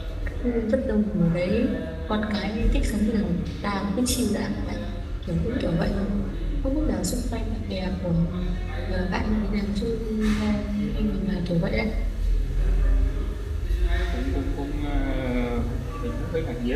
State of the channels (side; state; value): both; identical; correlation 1.00